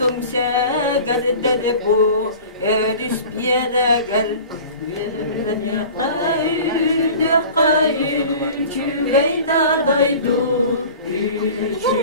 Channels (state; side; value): inverted; both; correlation -0.41